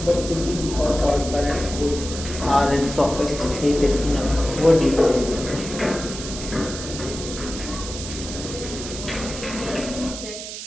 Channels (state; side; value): noise; right; hiss, 9 dB below the sound